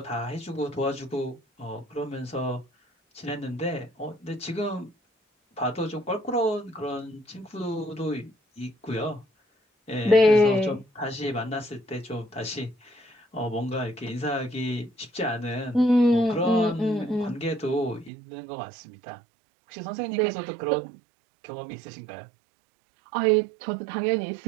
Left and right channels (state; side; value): drops out; left; at 18.1 s